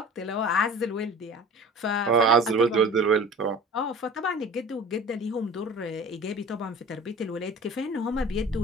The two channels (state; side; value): normal; both; correlation 0.41